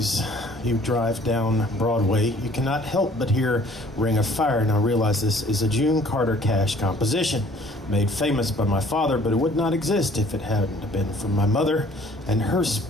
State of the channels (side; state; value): both; normal; correlation 0.55